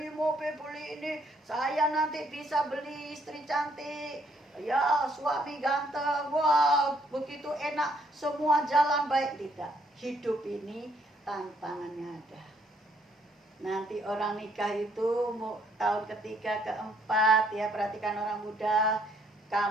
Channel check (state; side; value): normal; both; correlation 0.68